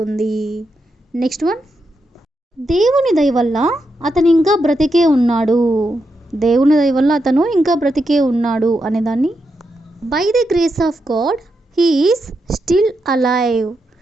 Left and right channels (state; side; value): normal; both; correlation 0.84